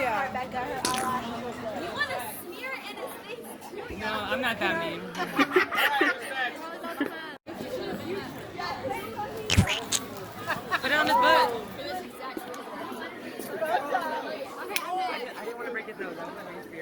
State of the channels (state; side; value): identical; both; correlation 1.00